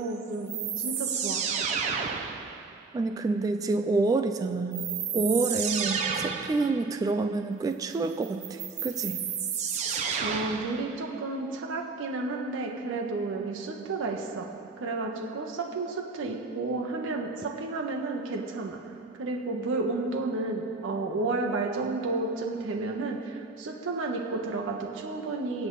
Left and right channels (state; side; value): quieter; left; 3.5 dB